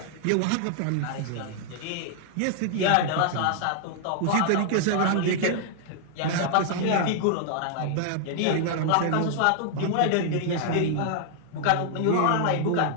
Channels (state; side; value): different; both; correlation -0.01